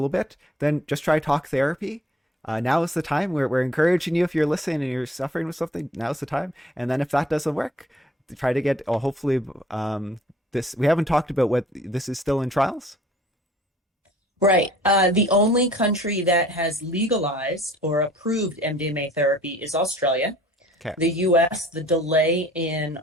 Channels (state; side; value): normal; both; correlation 0.54